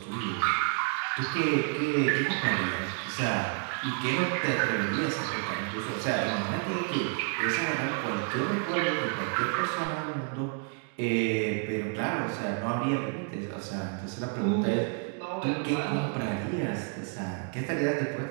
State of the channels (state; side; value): quieter; left; 39.1 dB